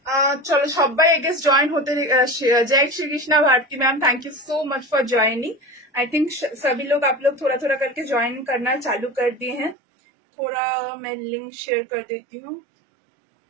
चलो सबाई आई गेस ज्वाइन होते। जय Shri Krishna Bharti ma'am, thank you so much for joining. I think सभी लोग आप लोग थोड़ा थोड़ा करके ज्वाइन करना चालू कर दिए हैं। थोड़ा मैं लिंक शेयर कर देती हूँ,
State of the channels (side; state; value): left; drops out; at 9.8 s